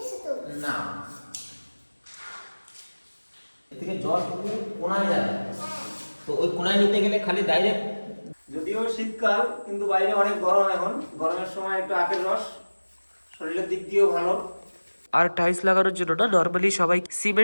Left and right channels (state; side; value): inverted; both; correlation -1.00